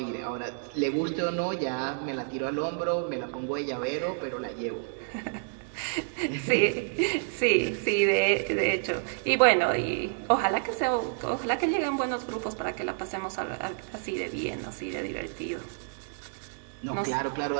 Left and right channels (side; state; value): left; silent; digital silence